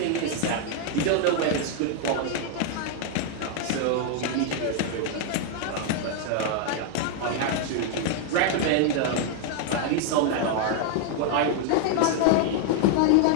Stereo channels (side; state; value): both; different; correlation 0.00